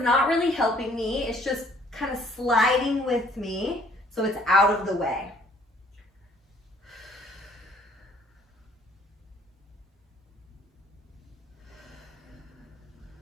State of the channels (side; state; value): both; normal; correlation 0.60